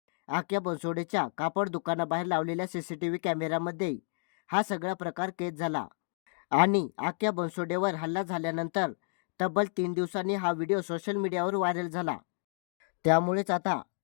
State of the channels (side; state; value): right; silent; 57 dB below the other